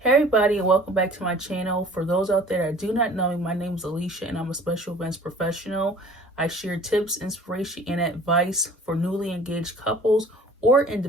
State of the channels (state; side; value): normal; both; correlation 0.49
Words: everybody, and welcome back to my channel. For those out there that do not know me, my name is Alicia and I'm a special events professional. I share tips, inspiration, and advice for newly engaged couples or